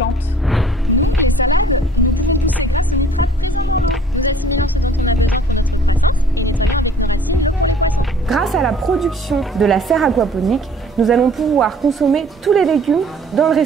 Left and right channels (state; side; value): normal; both; correlation 0.54